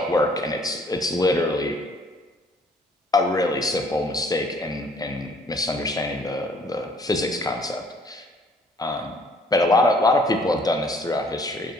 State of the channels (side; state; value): both; normal; correlation 0.59